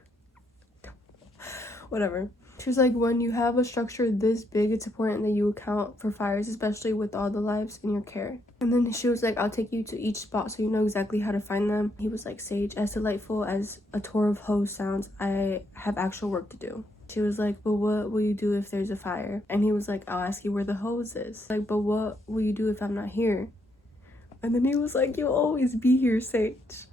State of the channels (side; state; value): both; normal; correlation 0.75